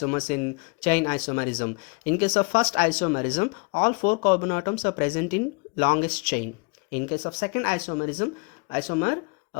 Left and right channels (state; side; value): quieter; right; 31.8 dB